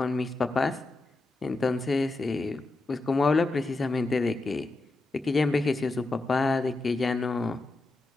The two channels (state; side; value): quieter; right; 3.1 dB